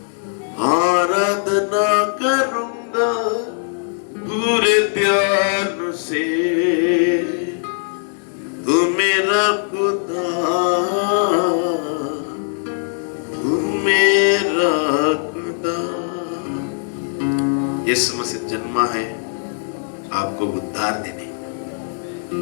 आराधना करूँगा पूरे ध्यान से। तू मेरा खुदा, तू मेरा खुदा। यीशु मसीह जन्मा है आपको उद्धार देने।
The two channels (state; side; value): silent; right; digital silence